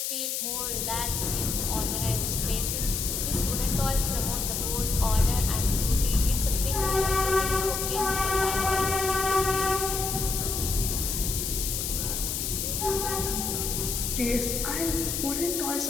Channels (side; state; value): left; noise; hiss, 2 dB below the sound